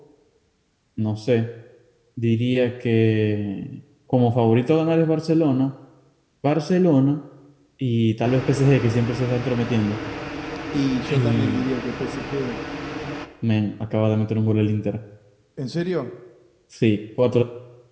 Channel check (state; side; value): identical; both; correlation 1.00